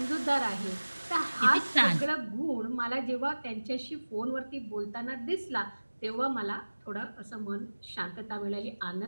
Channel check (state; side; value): inverted; both; correlation -1.00